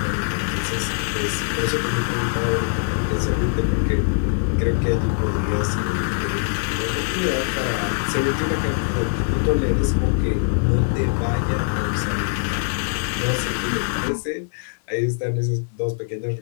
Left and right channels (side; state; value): right; silent; digital silence